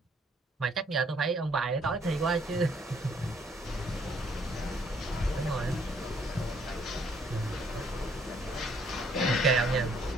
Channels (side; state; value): both; normal; correlation 0.65